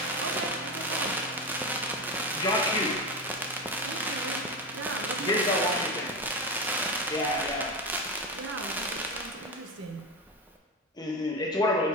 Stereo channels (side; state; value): both; normal; correlation 0.17